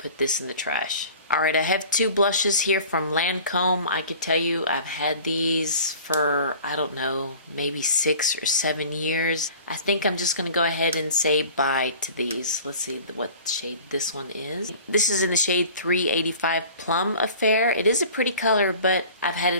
this in the trash. Alright, I have 2 blushes here from Lancome. I could tell you I've had these for, I don't know, maybe 6 or 7 years. I think I'm just going to go ahead and say bye to these. Let's see what shade this one is. This is in the shade 385 Plum Affair. It is a pretty color, but I've had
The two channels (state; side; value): inverted; both; correlation -0.44